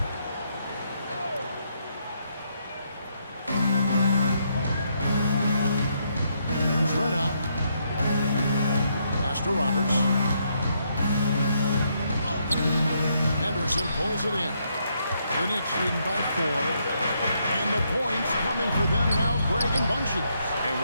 There's Red up. Pass to Roberts. Henderson pulls it in. The Knicks leading by 4. And the points coming for them now, Greg and Bunches. And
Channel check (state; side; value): inverted; both; correlation -0.76